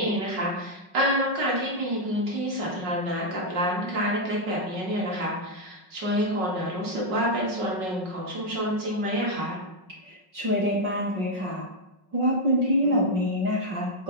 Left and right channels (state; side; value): late; left; 5.4 ms